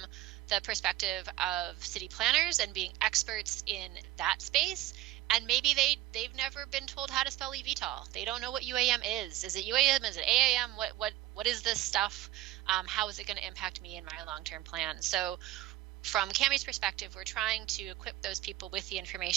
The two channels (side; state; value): left; quieter; 15.6 dB